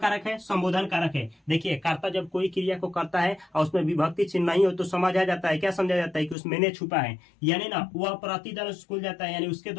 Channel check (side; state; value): right; drops out; at 6.4 s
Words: है, संबोधन कारक है? देखिए, कर्ता जब कोई क्रिया को करता है और उसमें विभक्ति चिन्ह नहीं हो तो समझ आ जाता है, क्या समझा जाता है कि उसमें ने छुपा है, यानी ना वह प्रतिदिन स्कूल जाता है, यानी उसके